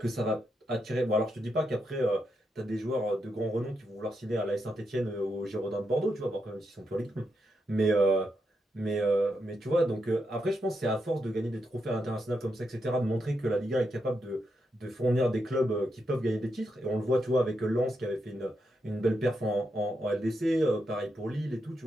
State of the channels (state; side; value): normal; both; correlation 0.83